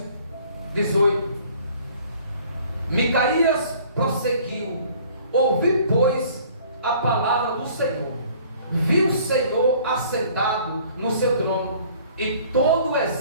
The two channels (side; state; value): both; inverted; correlation -0.54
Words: 18. Micaías prosseguiu: ouvi, pois, a palavra do Senhor. Vi o Senhor assentado no seu trono, e todo o